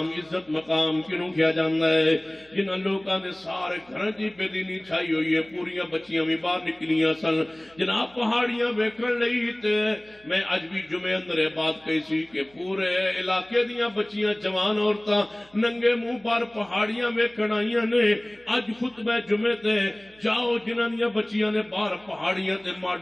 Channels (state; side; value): noise; right; hum, 29 dB below the sound